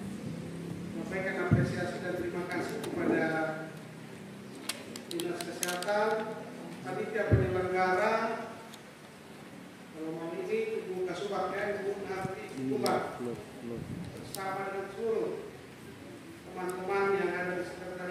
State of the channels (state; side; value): identical; both; correlation 1.00